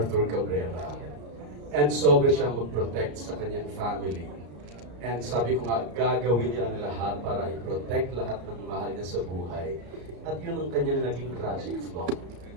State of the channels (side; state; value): left; late; 34 ms